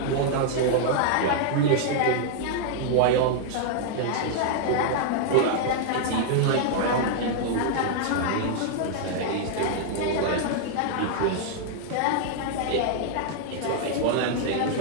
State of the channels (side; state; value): both; different; correlation -0.01